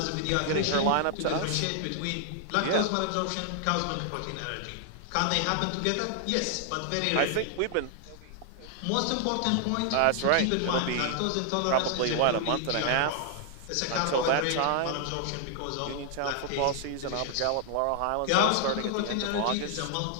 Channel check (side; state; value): both; different; correlation 0.00